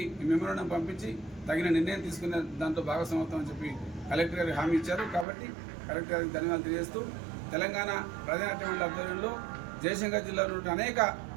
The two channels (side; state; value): left; drops out; at 5.2 s